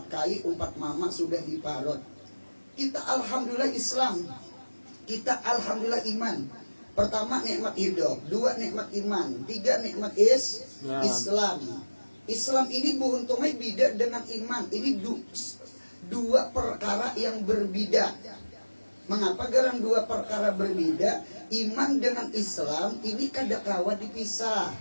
kai, umpat mama sudah diparut. Kita alhamdulillah Islam. Kita alhamdulillah iman. Pertama nikmat hidup, 2 nikmat iman, 3 nikmat Islam. Islam ini buuntungnya beda dengan iman. Ini 2 perkara yang berbeda. Mengapa garang 2 perkara berbeda? Iman dengan Islam ini kada kawa dipisah.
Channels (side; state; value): both; inverted; correlation -1.00